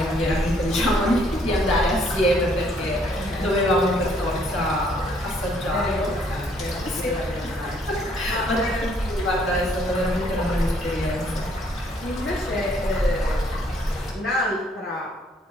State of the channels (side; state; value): both; normal; correlation 0.66